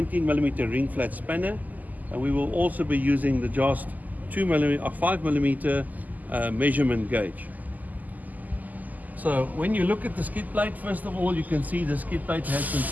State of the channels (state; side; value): late; left; 0.081 ms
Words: ring flat spanner, and we will also be using the Jost 5mm measurement gauge. So when you look at the skid plate, first of all, you can see the skid plate has been